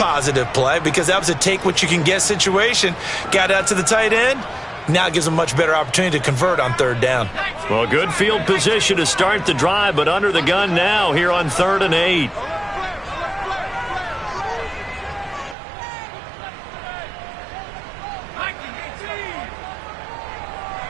play because that was a take-what-you-can-get situation. Got out to the tight end. Now it gives them a much better opportunity to convert on 3rd down. Well, good field position to start the drive, but under the gun now here on 3rd and 8.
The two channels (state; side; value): drops out; left; at 15.6 s